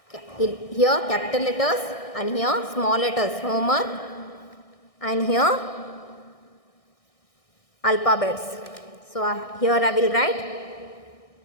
here capital letters and here small letters homework, and here alphabets. So here I will write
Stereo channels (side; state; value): right; late; 1.6 ms